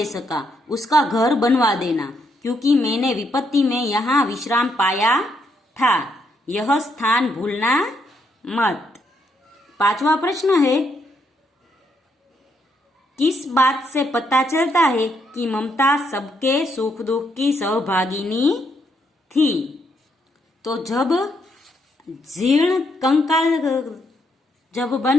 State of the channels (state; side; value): normal; both; correlation 0.76